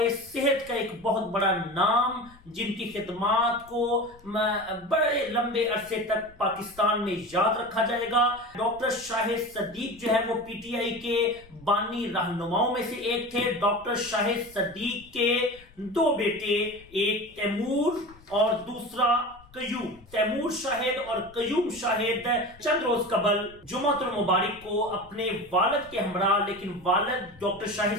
सेहत का एक बहुत बड़ा नाम, जिनकी खिदमात को बड़े लंबे अरसे तक पाकिस्तान में याद रखा जाएगा। डॉक्टर शाहिद सदीक जो है वो पीटीआई के बानी रहनुमाओं में से एक थे। डॉक्टर शाहिद सदीक के दो बेटे, एक तैमूर और दूसरा कयूम। तैमूर शाहिद और कयूम शाहिद चंद रोज कबल जुमातुल मुबारक को अपने वालिद के हमरा, लेकिन वालिद डॉक्टर शाहिद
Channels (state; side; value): noise; left; rumble, 24 dB below the sound